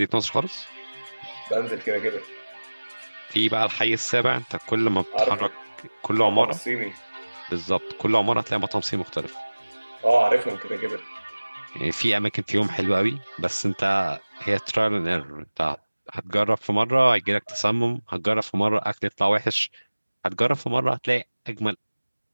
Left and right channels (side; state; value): both; inverted; correlation -1.00